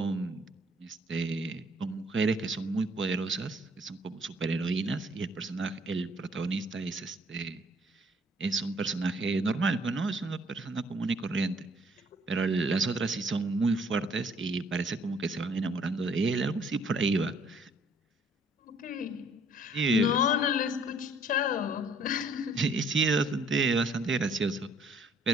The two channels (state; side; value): normal; both; correlation 0.61